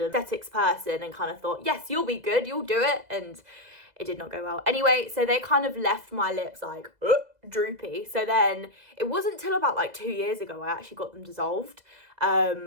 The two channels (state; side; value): late; left; 2.0 ms